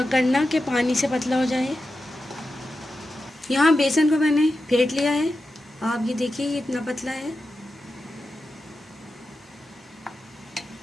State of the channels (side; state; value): both; normal; correlation 0.91